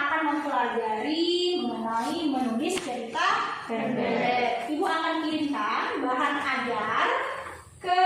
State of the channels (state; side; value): identical; both; correlation 1.00